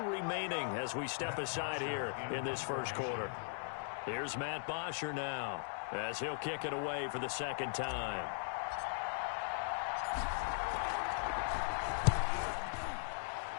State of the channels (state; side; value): silent; right; digital silence